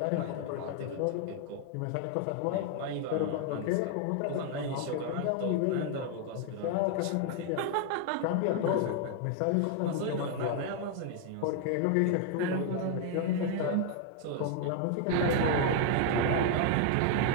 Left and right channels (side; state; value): both; different; correlation 0.00